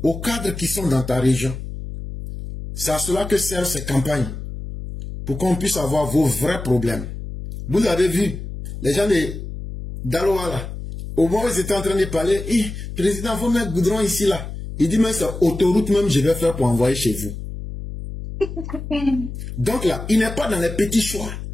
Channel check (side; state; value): left; noise; hum, 8 dB below the sound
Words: aux cadres qui sont dans ta région. C'est à cela que servent ces campagnes. Pour qu'on puisse avoir vos vrais problèmes. Vous avez vu, les gens d'Aloa là, au moment où ils étaient en train de parler, président, il faut mettre goudron ici là. Il dit, mais c'est autoroute même je vais faire pour envoyer chez vous. Donc là, il n'est pas dans les petits choix.